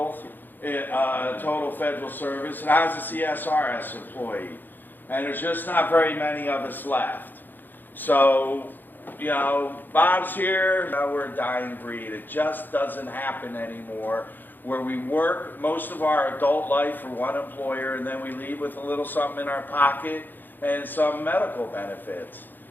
federal service, and I was a CSRS employee. And there's just not very many of us left. So, you know, Bob's here. Now we're a dying breed. It just doesn't happen anymore, where we work most of our adult life for one employer and then we leave with a little something in our pocket and some medical benefits.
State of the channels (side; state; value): right; late; 0.090 ms